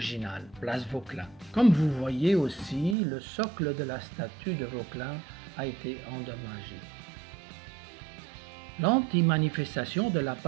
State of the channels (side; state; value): left; drops out; at 3.0 s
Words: place Vauclin. Comme vous voyez aussi, le socle de la statue de Vauclin a été endommagé. L'anti-manifestation de la